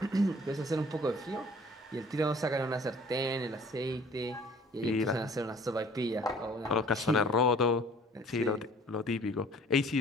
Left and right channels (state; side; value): normal; both; correlation 0.52